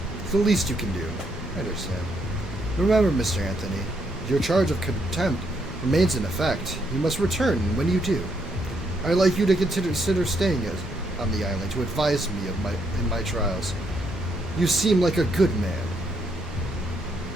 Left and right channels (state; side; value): normal; both; correlation 0.75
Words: It's the least you can do. I understand. Remember, Mr. Anthony, your charge of contempt remains in effect. You must return when you do. I'd like you to consider staying on the island to advise me in my trials. You seem like a good man.